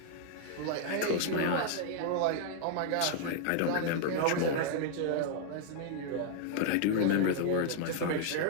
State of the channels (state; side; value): different; both; correlation -0.01